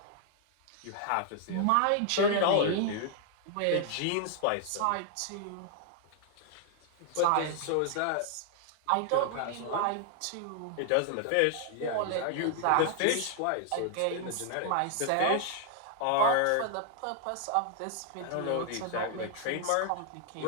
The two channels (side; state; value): both; different; correlation 0.00